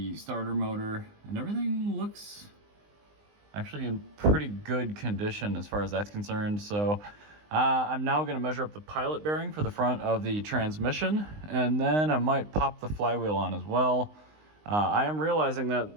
starter motor, and everything looks actually in pretty good condition as far as that's concerned. So I'm now gonna measure up the pilot bearing for the front of the transmission, and then I might pop the flywheel on as well. I am realizing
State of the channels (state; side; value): late; left; 19 ms